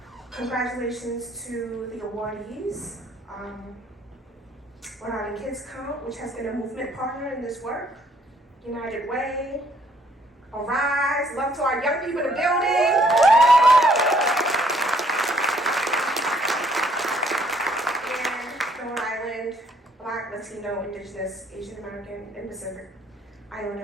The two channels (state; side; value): normal; both; correlation 0.65